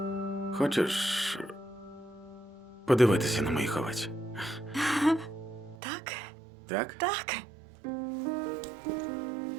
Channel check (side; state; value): left; drops out; at 5.8 s